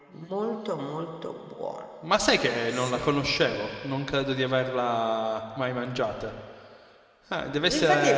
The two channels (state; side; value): identical; both; correlation 1.00